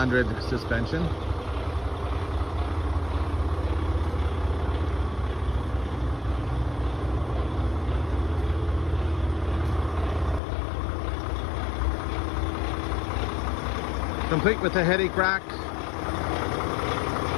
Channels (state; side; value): drops out; right; at 10.4 s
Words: suspension. Complete with the headache rack.